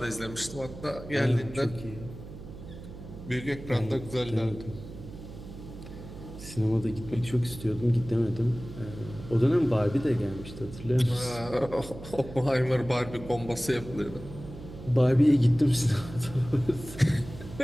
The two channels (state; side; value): noise; right; hum, 13 dB below the sound